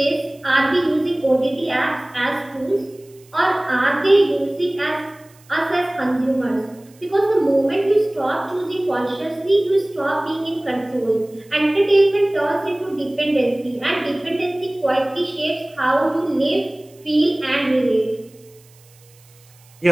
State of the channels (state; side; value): noise; right; hiss, 29 dB below the sound